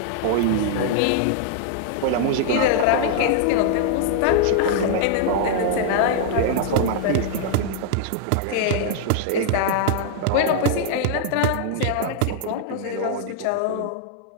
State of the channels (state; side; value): different; both; correlation -0.01